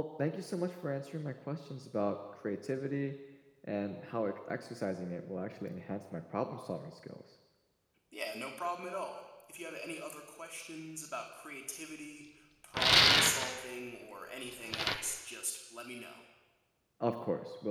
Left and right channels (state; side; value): identical; both; correlation 1.00